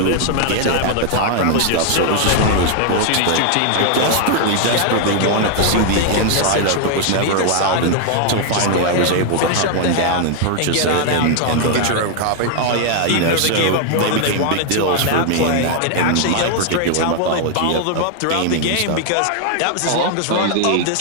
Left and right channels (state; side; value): different; both; correlation 0.00